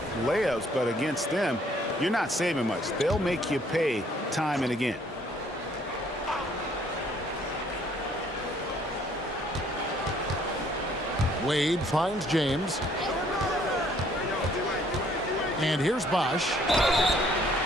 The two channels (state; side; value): normal; both; correlation 0.62